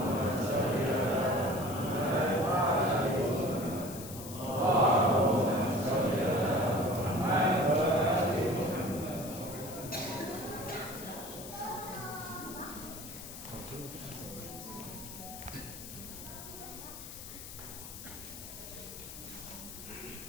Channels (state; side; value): noise; left; hiss, 12 dB below the sound